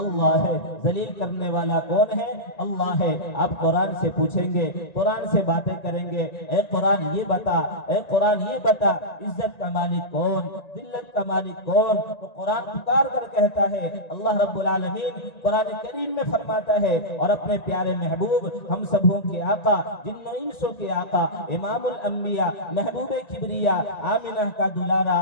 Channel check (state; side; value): late; right; 1.9 ms